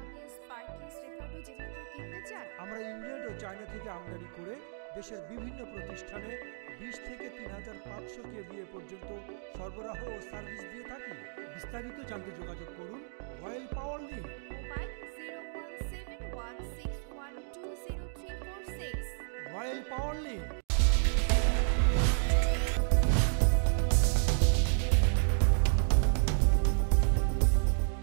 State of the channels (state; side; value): silent; left; digital silence